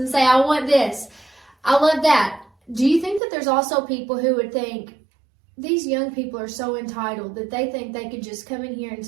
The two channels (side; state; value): left; drops out; at 3.2 s